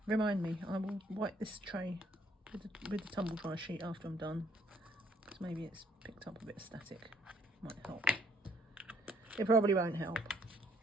Remind me, I will wipe this tray with the tumble dry sheet after I'm done. Because maybe it's picked up a bit of static. Might help. It probably won't help.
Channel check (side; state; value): both; normal; correlation 0.66